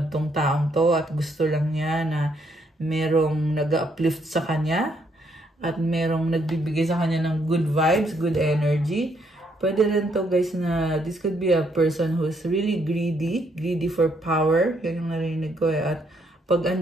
tong taong to at gusto lang niya na merong nag-uplift sa kanya at merong nagbibigay sa kanya ng good vibes, good energy. Pwede rin to guys na this could be a person who's really greedy for power. Yan yung narinig ko eh. At pag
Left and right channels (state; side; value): normal; both; correlation 0.72